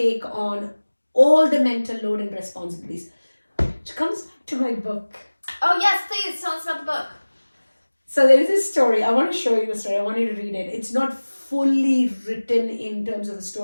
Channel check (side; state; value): both; inverted; correlation -1.00